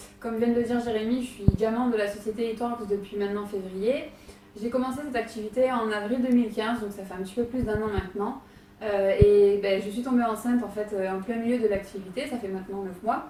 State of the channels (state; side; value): identical; both; correlation 1.00